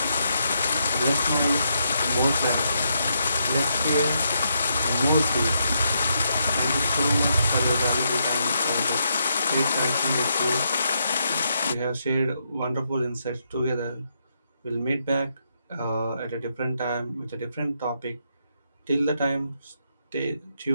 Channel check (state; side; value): inverted; both; correlation -0.79